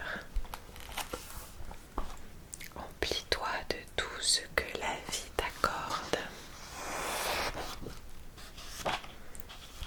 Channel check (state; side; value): identical; both; correlation 1.00